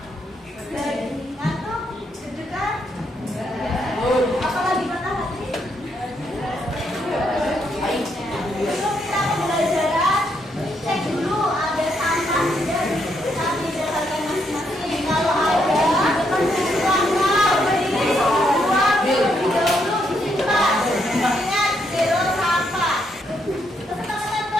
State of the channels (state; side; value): normal; both; correlation 0.77